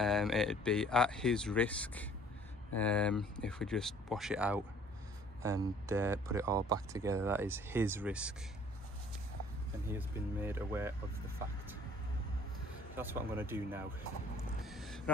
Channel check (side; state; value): both; normal; correlation 0.55